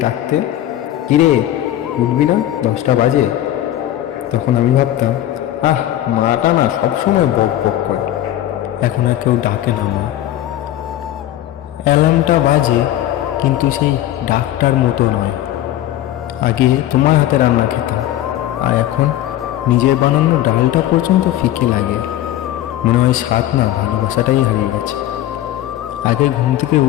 ডাকতে, কিরে উঠবি না, 10টা বাজে। তখন আমি ভাবতাম, মাটা না সবসময় বক বক করে। এখন আর কেউ ডাকে না মা। অ্যালার্মটা বাজে, কিন্তু সেই ডাকটার মতো নয়। আগে তোমার হাতে রান্না খেতাম, আর এখন নিজের বানানো ডালটা পর্যন্ত ফিকে লাগে। মনে হয় স্বাদ না, ভালোবাসাটাই হারিয়ে গেছে। আগে ঘুম থেকে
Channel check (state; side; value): quieter; right; 13.2 dB